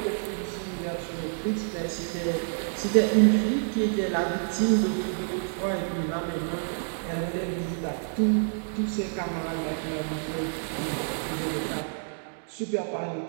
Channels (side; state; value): left; silent; digital silence